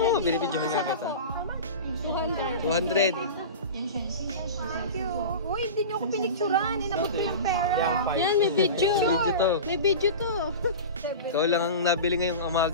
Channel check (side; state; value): both; inverted; correlation -0.30